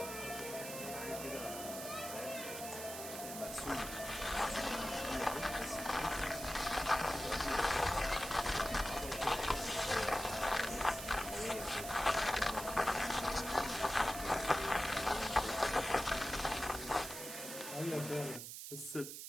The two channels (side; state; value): right; noise; hiss, 8 dB below the sound